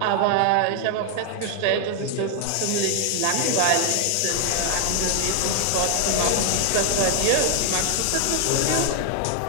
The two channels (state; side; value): different; both; correlation 0.00